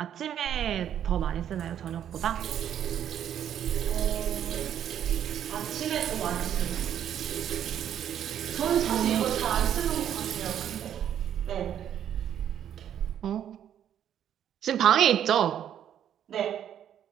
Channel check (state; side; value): quieter; left; 9.9 dB